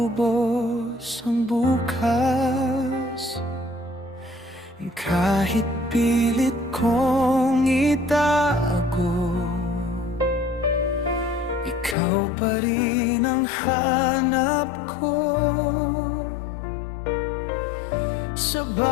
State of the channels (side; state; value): right; drops out; at 12.0 s